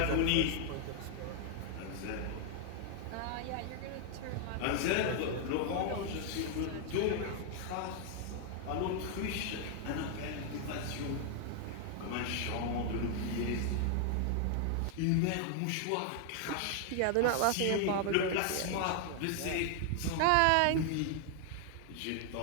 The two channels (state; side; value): different; both; correlation 0.00